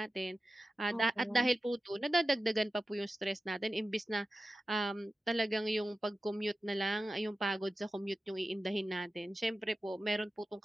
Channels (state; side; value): normal; both; correlation 0.93